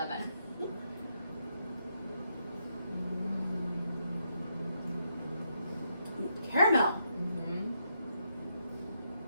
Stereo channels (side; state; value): both; inverted; correlation -0.79